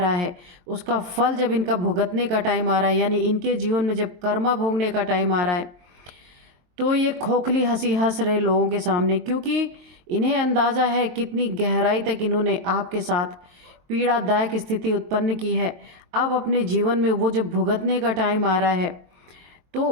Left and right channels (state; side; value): late; left; 23 ms